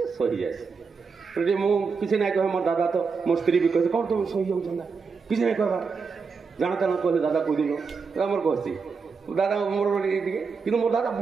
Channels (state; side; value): quieter; left; 5.1 dB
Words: सही जाए मुझे ना कहे मोर दादा तो मो स्त्री भी कहे कौन तुम सही जाऊँ किसी नहीं कहवा जाना कहले दादा कहीदेल मोर कहसी दादा मोर कि मोर दादा